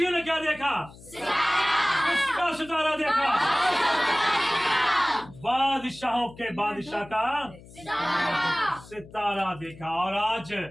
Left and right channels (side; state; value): left; noise; hum, 20 dB below the sound